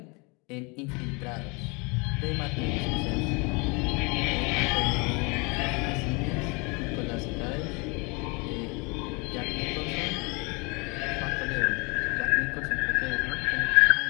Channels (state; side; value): quieter; right; 29.3 dB